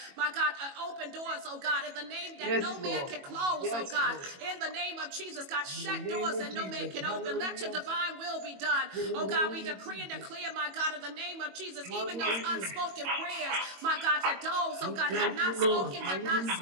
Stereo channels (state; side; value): late; left; 22 ms